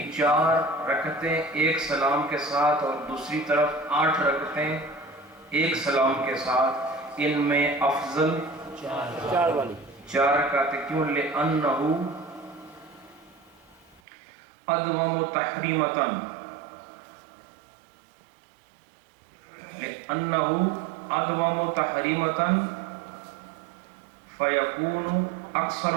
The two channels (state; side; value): drops out; left; at 14.0 s